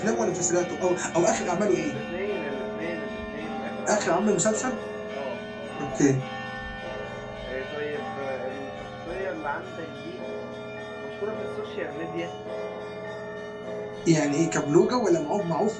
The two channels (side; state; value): both; identical; correlation 1.00